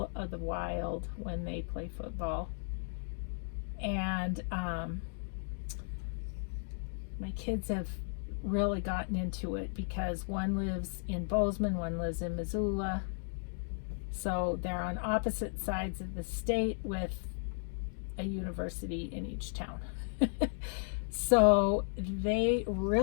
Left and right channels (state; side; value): silent; right; digital silence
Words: of the Wild when they play football. And my kids have really gotten into it because one lives in Bozeman, one lives in Missoula. So they're on opposite sides of the state with a university in each town. So they